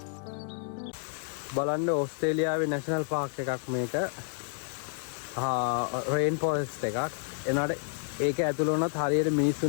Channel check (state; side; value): silent; right; 58 dB below the other